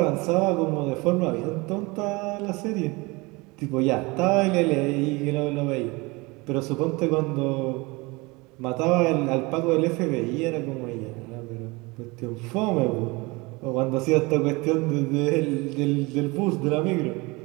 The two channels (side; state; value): left; quieter; 24.9 dB